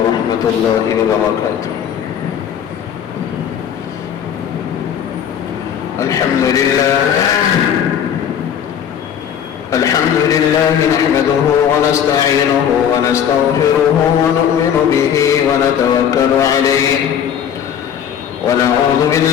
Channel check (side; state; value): right; quieter; 8.8 dB